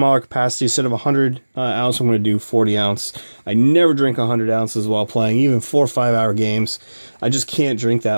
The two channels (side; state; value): both; inverted; correlation -1.00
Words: capacity. Instead of 100 ounce, I'm going to do 40 ounce. I never drink 100 ounces while playing, even 4 or 5 hour games. I just can't drink